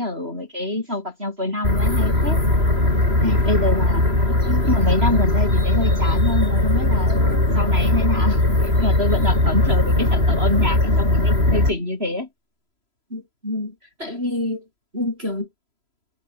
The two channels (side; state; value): left; late; 3.0 ms